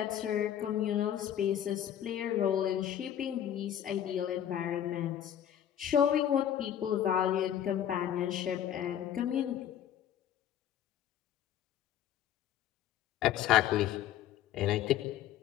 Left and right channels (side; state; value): right; quieter; 10.5 dB